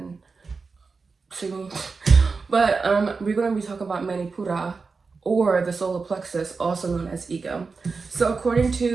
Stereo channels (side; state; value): left; quieter; 4.5 dB